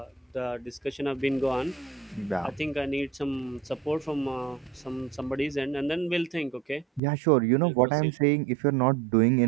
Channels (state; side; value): drops out; left; at 7.0 s